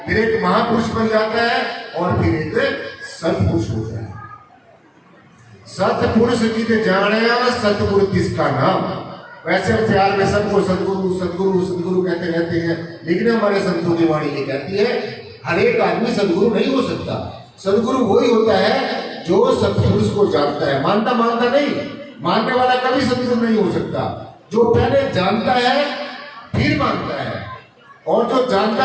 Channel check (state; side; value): identical; both; correlation 1.00